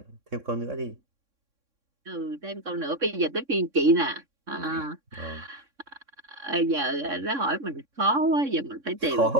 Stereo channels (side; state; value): left; late; 3.6 ms